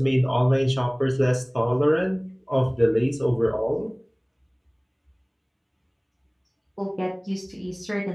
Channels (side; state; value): both; identical; correlation 1.00